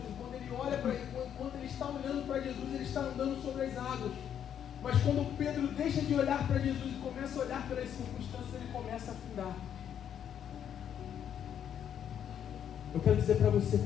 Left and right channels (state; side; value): quieter; right; 9.2 dB